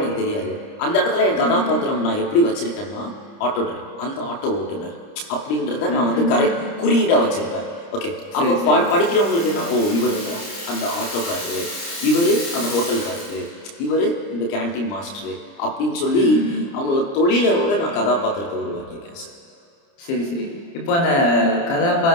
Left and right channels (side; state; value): right; late; 30 ms